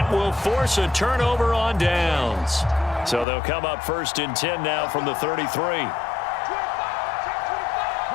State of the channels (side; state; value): right; drops out; at 3.2 s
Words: will force a turnover on downs. So they'll come up 1st and 10 now from the 33.